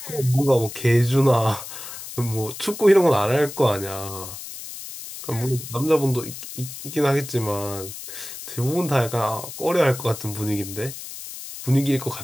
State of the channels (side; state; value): left; noise; hiss, 11 dB below the sound